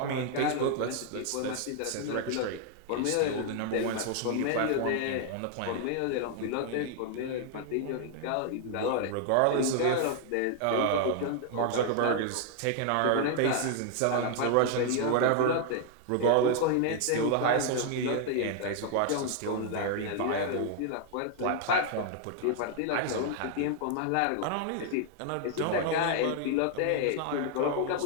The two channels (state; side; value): different; both; correlation 0.00